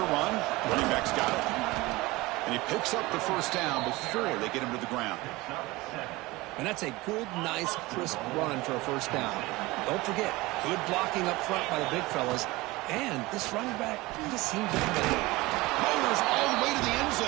run. Running back's got it. And he picks up the first down before they get him to the ground. And that's a good, nice, crisp run for a first down. Don't forget, good blocking up front by the big fellas. And this running back just seems to have it. Powers all the way to the end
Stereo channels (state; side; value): quieter; left; 21.1 dB